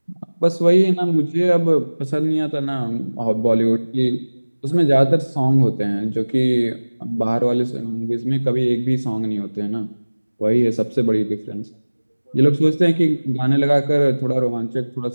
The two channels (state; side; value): inverted; both; correlation -1.00